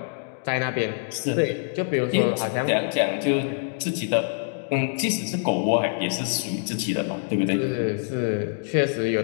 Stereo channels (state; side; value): silent; right; digital silence